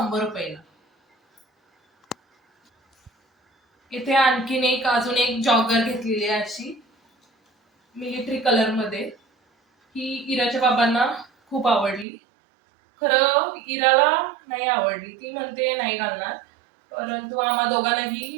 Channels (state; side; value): drops out; left; at 12.1 s